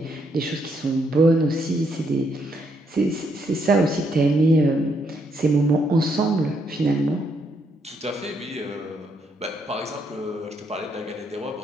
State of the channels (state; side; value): normal; both; correlation 0.75